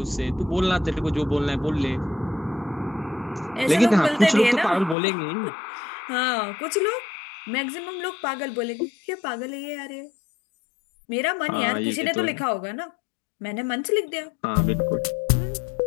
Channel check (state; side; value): drops out; right; at 5.0 s